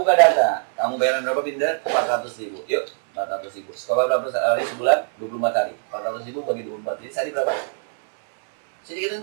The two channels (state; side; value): silent; left; digital silence